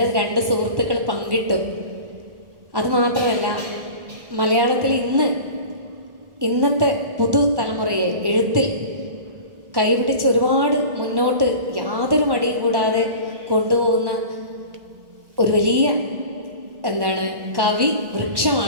2 സുഹൃത്തുക്കൾ പങ്കിട്ടു. അതുമാത്രമല്ല, മലയാളത്തിൽ ഇന്നത്തെ പുതുതലമുറയെ എഴുത്തിൽ കൈപിടിച്ച് ഒരുപാട് മുന്നോട്ട് യാതൊരു മടിയും കൂടാതെ കൊണ്ടുപോകുന്ന ഒരു വലിയ കവി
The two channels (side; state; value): left; late; 1.1 ms